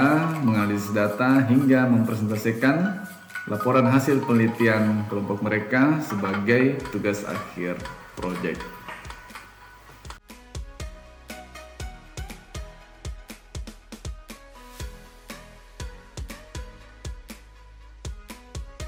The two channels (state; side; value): identical; both; correlation 1.00